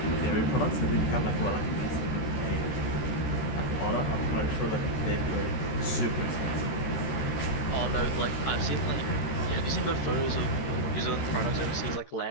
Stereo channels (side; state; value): right; late; 14 ms